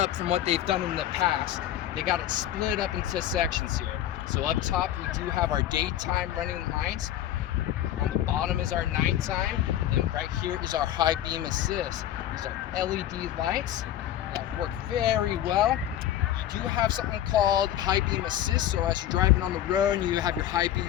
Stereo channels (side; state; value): right; quieter; 12.1 dB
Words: from what they've done in the past. They got it split up into sections here. So up top we do have our daytime running lights. On the bottom is our nighttime, and right here is our high beam assist. These are LED lights that work very well. You do have something called high beam assist, so as you're driving on the road and you have your high